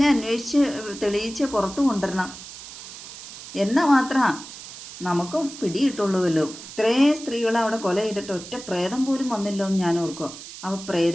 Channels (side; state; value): right; noise; hiss, 14 dB below the sound